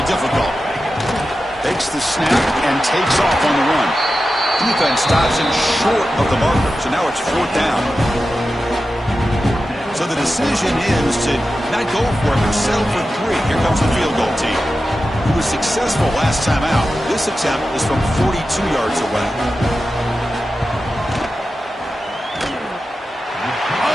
difficult. Takes the snap and takes off on the run. Defense stops him short of the marker, so now it's 4th down. So the decision is to not go for it, but settle for 3. Here comes the field goal team. He was successful last time out. This attempt is from 42 yards away.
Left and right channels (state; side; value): normal; both; correlation 0.92